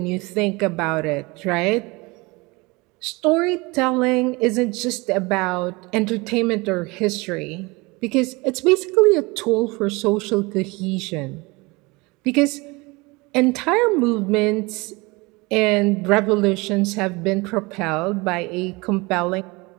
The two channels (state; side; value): quieter; left; 24.9 dB